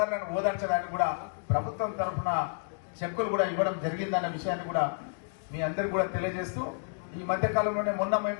ఓదార్చడానికి కూడా ప్రభుత్వం తరఫున చెక్కులు కూడా ఇవ్వడం జరిగిందన్న విషయాన్ని కూడా మీ అందరికీ కూడా తెలియజేస్తూ, ఈ మధ్య కాలంలోనే మొన్న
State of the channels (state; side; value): silent; right; digital silence